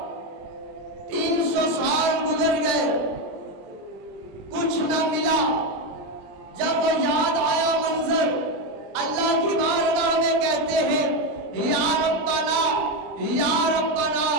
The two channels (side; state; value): left; late; 20 ms